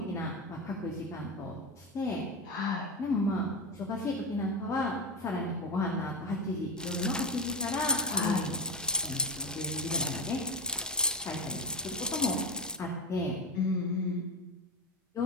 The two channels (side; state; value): both; normal; correlation 0.16